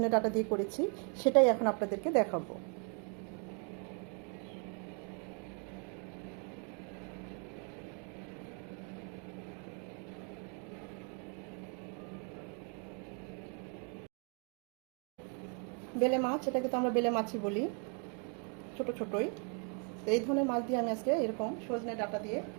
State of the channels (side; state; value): left; quieter; 39.4 dB